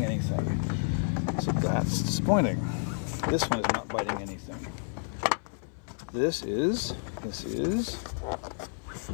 anything, so that's disappointing. This one is not biting anything. This is.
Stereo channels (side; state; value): right; silent; 58 dB below the other